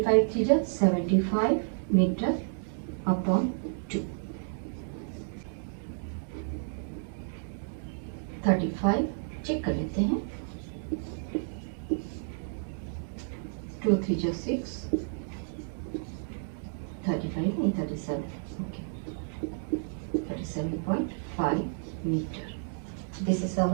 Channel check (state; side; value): silent; left; digital silence